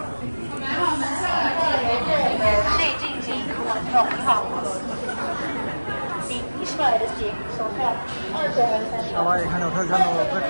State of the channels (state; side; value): inverted; both; correlation -1.00